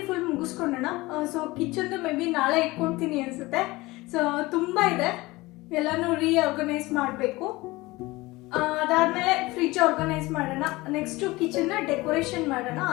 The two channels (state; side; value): quieter; right; 20.9 dB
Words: ಫುಲ್ ಮುಗಿಸ್ಕೊಂಡೋಣ. ಸೊ ಕಿಚನ್ದು ಮೇ ಬಿ ನಾಳೆ ಇಟ್ಕೊಳ್ತೀನಿ ಅನ್ಸುತ್ತೆ. ಸೊ ತುಂಬಾ ಇದೆ, ಎಲ್ಲಾನು ರೀಆರ್ಗನೈಸ್ ಮಾಡಬೇಕು. ಅದಾದ್ಮೇಲೆ ಫ್ರಿಡ್ಜ್ ಆರ್ಗನೈಸ್ ಮಾಡೋಣ. ನೆಕ್ಸ್ಟ್ ಕಿಚನ್ನ ಡೆಕೋರೇಷನ್ ಮಾಡೋಣ,